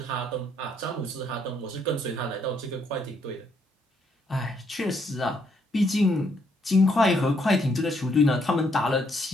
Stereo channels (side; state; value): both; normal; correlation 0.72